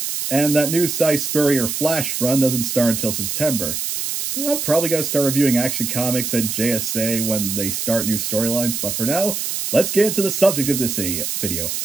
and that new Cy Spurrier Flash run doesn't start until September. I'm probably going to start reviewing Action Comics and JSA when they start new storylines, but for now, let's get into the subject of this video.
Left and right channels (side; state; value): right; noise; hiss, 3 dB below the sound